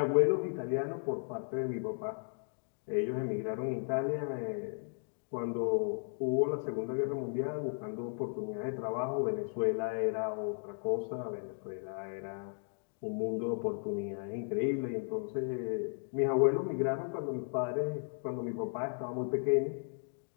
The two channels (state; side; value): silent; right; 54 dB below the other